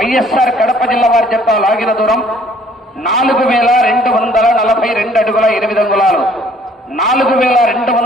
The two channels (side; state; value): both; normal; correlation 0.59